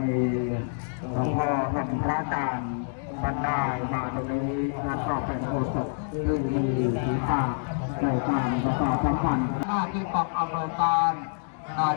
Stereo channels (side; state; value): right; silent; digital silence